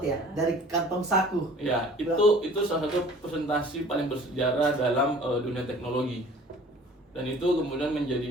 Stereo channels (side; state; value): both; normal; correlation 0.48